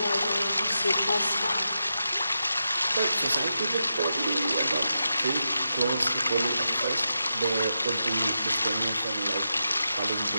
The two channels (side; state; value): both; inverted; correlation -0.87